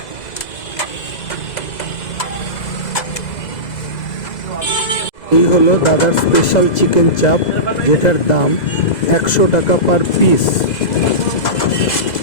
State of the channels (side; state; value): right; late; 2.0 ms